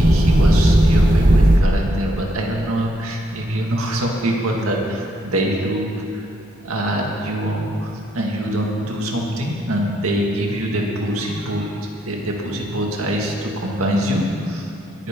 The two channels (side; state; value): both; normal; correlation 0.75